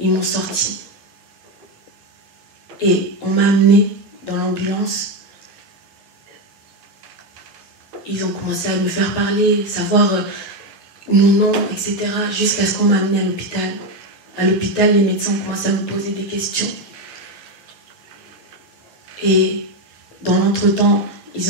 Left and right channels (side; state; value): both; normal; correlation 0.10